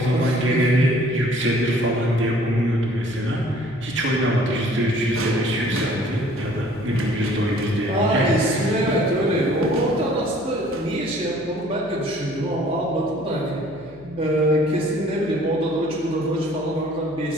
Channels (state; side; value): noise; left; hum, 24 dB below the sound